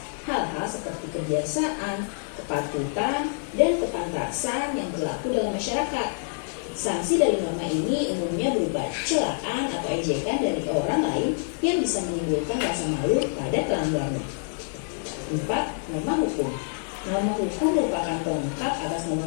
hal-hal seperti kebiasaan, kepatutan, dan kepantasan yang berlaku dalam masyarakat. Sanksi dari norma ini umumnya berupa celaan atau ejekan dari orang lain yang bisa menimbulkan rasa malu pada pelanggarnya. 4. Norma hukum. Norma hukum merupakan pelengkap atas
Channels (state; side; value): silent; right; digital silence